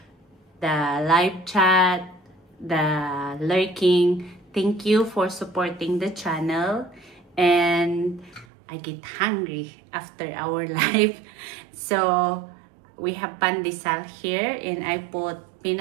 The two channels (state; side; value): drops out; left; at 8.5 s